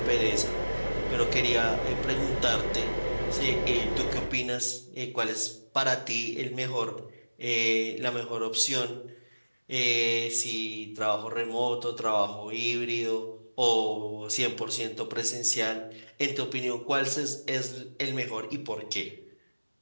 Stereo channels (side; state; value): both; inverted; correlation -1.00